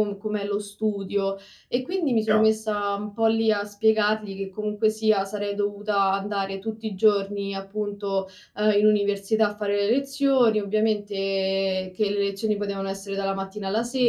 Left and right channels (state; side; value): identical; both; correlation 1.00